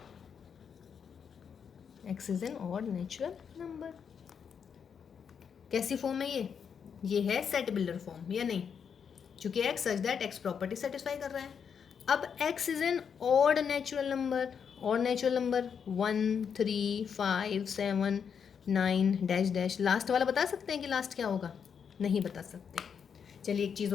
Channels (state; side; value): quieter; right; 7.0 dB